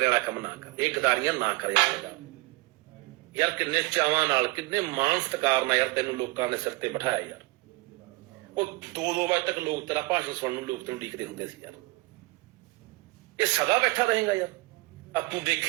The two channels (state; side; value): quieter; left; 24.0 dB